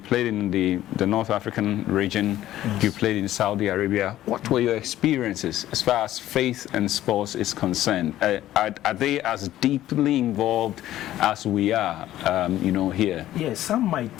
played in the North African region. Yes. You played in Saudi Arabia. What were your experiences as far as faith and sports is concerned? Are they as deeply involved as we are, you know, here? Yes, some might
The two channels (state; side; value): quieter; right; 13.6 dB